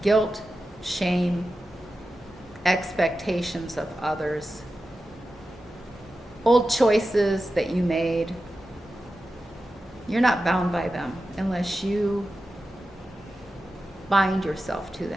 guilt, shame, expectations of others, old choices that you made. You're not bound by them unless you bind yourself to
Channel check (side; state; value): both; normal; correlation 0.92